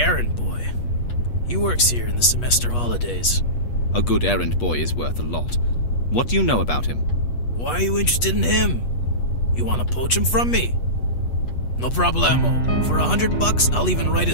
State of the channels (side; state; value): right; late; 8.2 ms